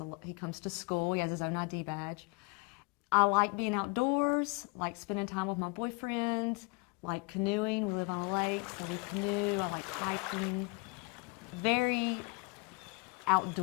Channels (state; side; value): quieter; right; 29.2 dB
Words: comes to school. He has his own ID badge. I like being outdoors, like spending time with my boyfriend, like canoeing. We live on a lake, so we canoe. I like hiking. Very